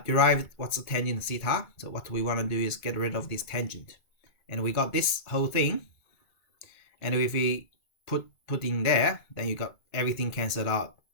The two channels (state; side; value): late; right; 2.2 ms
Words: derived. What's the tangent theta? So what we want to do is get rid of this tangent. And we got this whole thing. And if we put in there, then you got everything cancelled out.